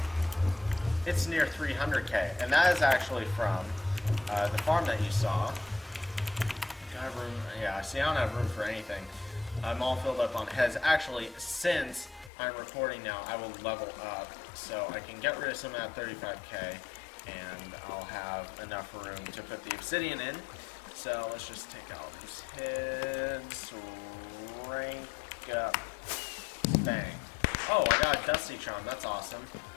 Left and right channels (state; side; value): drops out; right; at 12.3 s